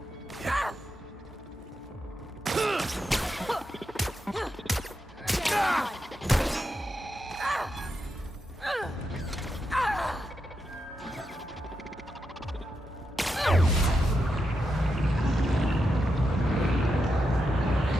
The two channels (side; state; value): both; normal; correlation 0.86